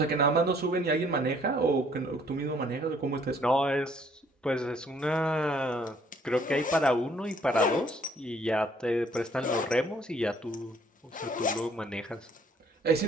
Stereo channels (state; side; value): normal; both; correlation 0.62